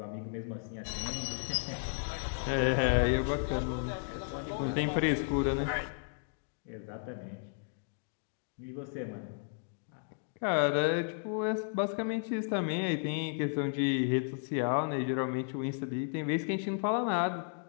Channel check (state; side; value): silent; right; digital silence